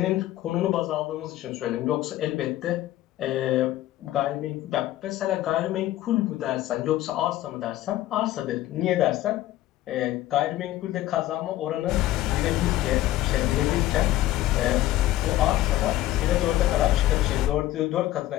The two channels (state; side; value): quieter; right; 14.8 dB